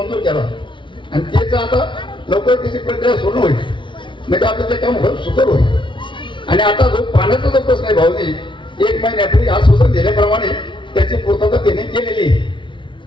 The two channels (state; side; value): late; right; 0.24 ms